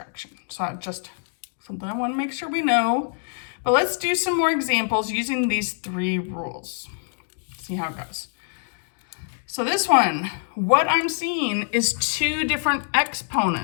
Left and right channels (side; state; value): right; silent; 55 dB below the other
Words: So just something I want to make sure we know. But let's do some more examples using these 3 rules. See how it goes. So this one, what I'm seeing is 2 different